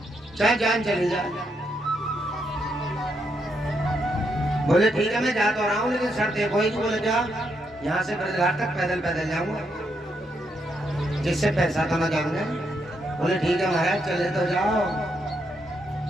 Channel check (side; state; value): both; normal; correlation 0.79